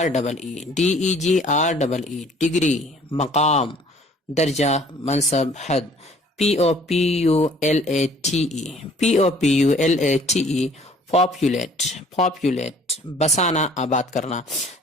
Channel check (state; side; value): normal; both; correlation 0.55